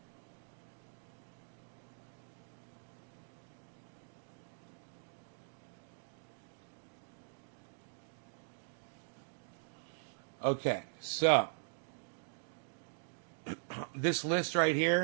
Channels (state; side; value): silent; left; digital silence